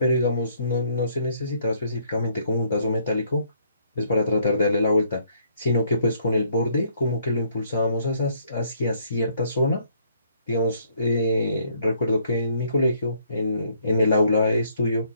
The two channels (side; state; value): both; inverted; correlation -0.67